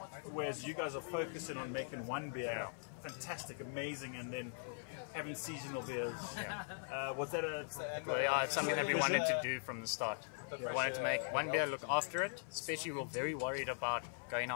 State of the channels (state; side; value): silent; right; 50 dB below the other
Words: whereas you guys are focusing on making one beer fantastic, amazing, and then having seasonal beers. Was that it's something that we wanted to do from the start. We wanted to make one beer, look after it, especially we were very worried about going